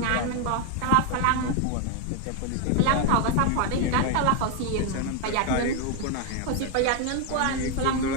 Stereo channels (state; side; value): different; both; correlation 0.01